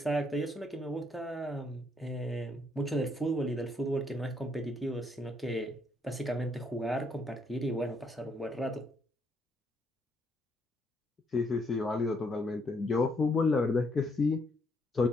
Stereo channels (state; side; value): normal; both; correlation 0.72